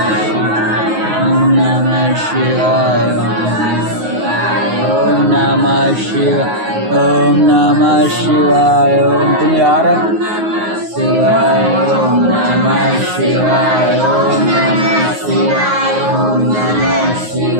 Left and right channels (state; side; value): late; left; 9.5 ms